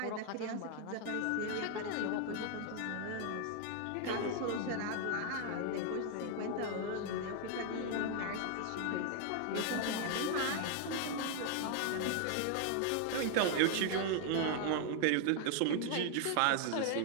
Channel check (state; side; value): different; both; correlation 0.00